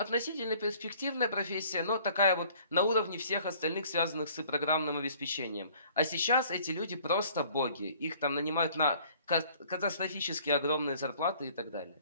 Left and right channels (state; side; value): inverted; both; correlation -0.55